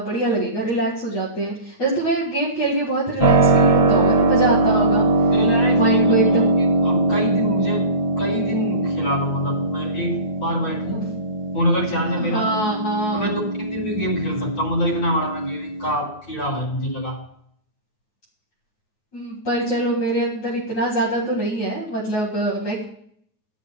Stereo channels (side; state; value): right; late; 9.4 ms